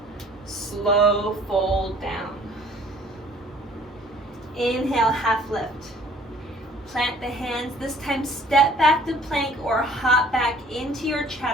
slow fold down. Inhale, half lift. Plant the hands, this time step back to plank or hop back into your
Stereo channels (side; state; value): both; normal; correlation 0.55